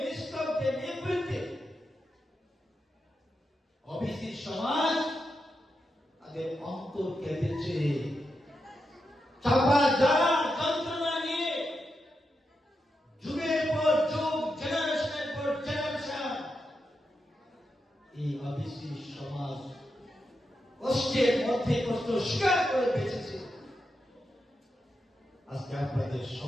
নিস্তব্ধে, নিবৃত্তে ওবিসি সমাজ তাদের অন্তর কেঁদেছে। চাপা যারা যন্ত্রণা নিয়ে যুগের পর যুগ, জেনারেশনের পর জেনারেশন এই ওবিসি সমাজ কষ্টের মধ্যে কষ্ট স্বীকার করে বেঁচেছে। আজকে আপনাদের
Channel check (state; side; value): normal; both; correlation 0.86